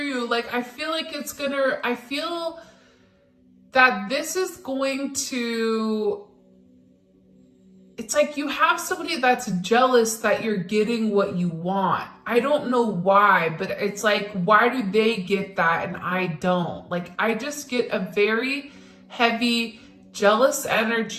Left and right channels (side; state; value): both; identical; correlation 1.00